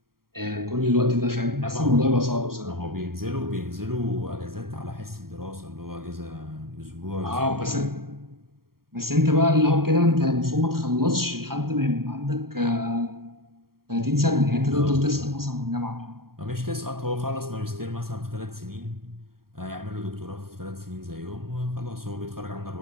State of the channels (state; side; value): late; left; 0.93 ms